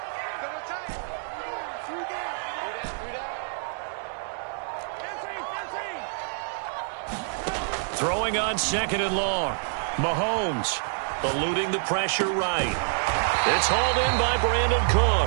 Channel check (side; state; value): left; silent; 60 dB below the other